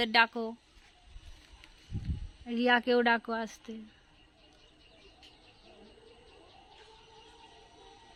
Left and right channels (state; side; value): identical; both; correlation 1.00